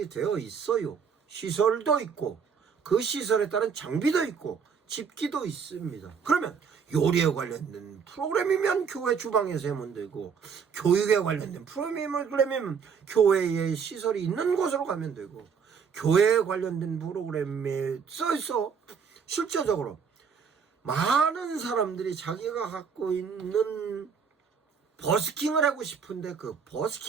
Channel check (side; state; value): left; quieter; 6.4 dB